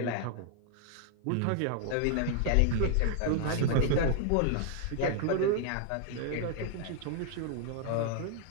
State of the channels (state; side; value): different; both; correlation 0.00